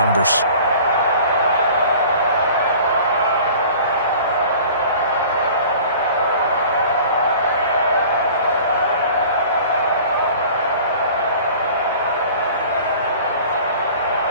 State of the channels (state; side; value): inverted; both; correlation -0.45